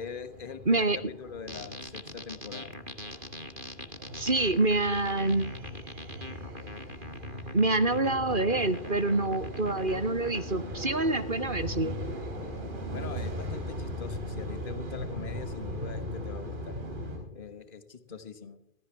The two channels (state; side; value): late; left; 2.4 ms